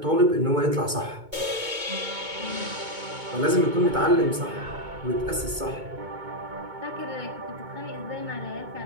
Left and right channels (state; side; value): late; left; 2.2 ms